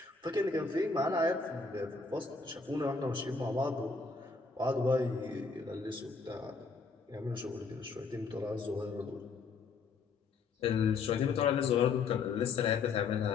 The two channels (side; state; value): right; quieter; 4.6 dB